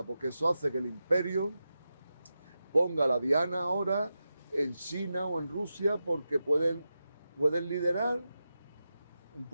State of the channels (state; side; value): inverted; both; correlation -0.90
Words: Porque eso hace que el imperio ponga la diana ahora en China o en Rusia porque pueden liderar un